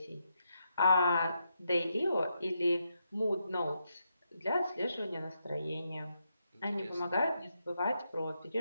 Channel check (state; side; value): inverted; both; correlation -0.82